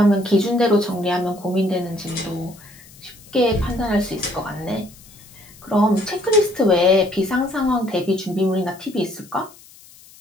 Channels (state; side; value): noise; left; hiss, 23 dB below the sound